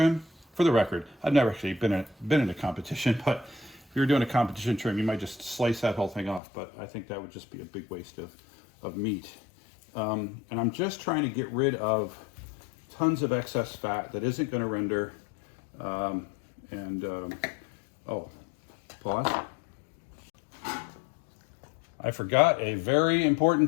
for the record, I've never actually been in a competition, but if you're doing a competition trim, you might just slice that whole thing off, but I think that would just be a big waste of meat. And I'm just trying to get rid of tons of excess fat that isn't going to render. Oh, pause. I forgot a very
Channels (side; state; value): right; drops out; at 6.4 s